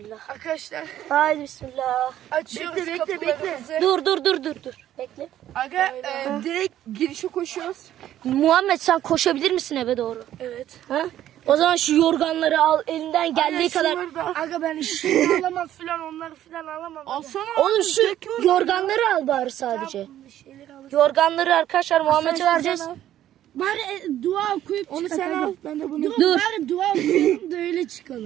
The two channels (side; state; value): left; quieter; 12.1 dB